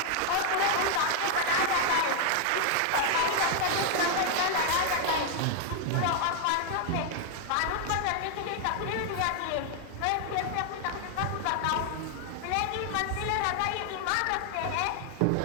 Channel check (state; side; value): different; both; correlation 0.00